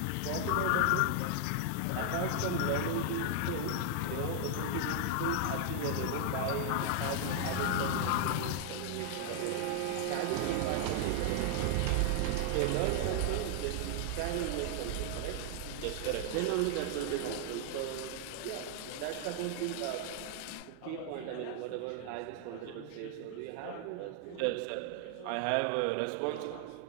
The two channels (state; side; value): different; both; correlation 0.00